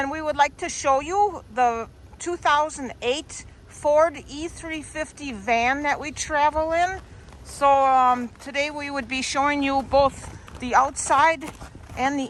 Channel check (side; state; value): both; identical; correlation 1.00